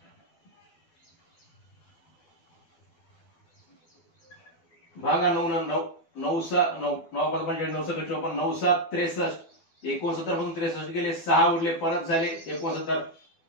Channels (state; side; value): late; right; 12 ms